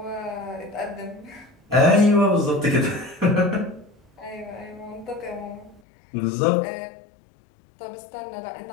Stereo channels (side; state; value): right; drops out; at 5.8 s